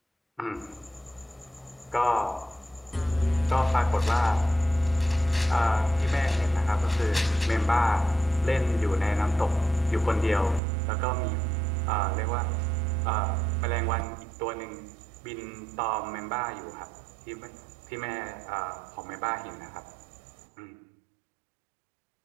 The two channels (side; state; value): left; drops out; at 10.6 s